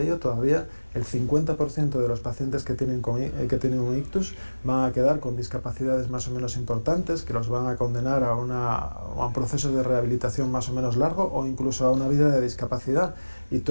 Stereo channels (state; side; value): inverted; both; correlation -1.00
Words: ello todavía el 50% de los pacientes que tienen un ictus van a quedar con discapacidades más o menos importantes, que los van a condenar a un proceso de rehabilitación más o menos largo o incluso a una vida de discapacidad. Y